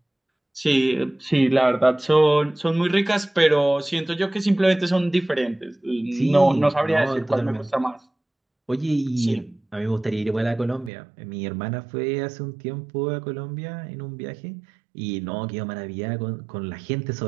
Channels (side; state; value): left; drops out; at 10.9 s